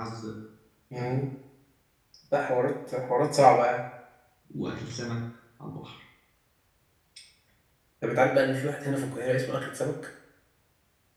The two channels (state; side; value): identical; both; correlation 1.00